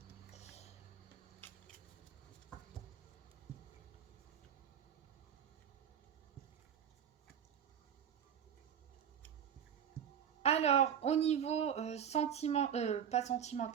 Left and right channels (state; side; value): quieter; left; 8.7 dB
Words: Alors, au niveau pas